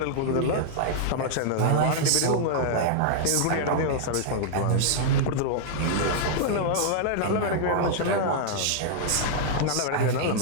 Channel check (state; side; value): different; both; correlation -0.01